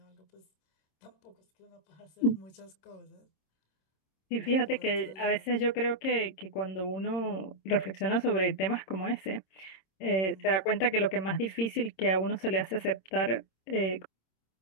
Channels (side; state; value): right; late; 26 ms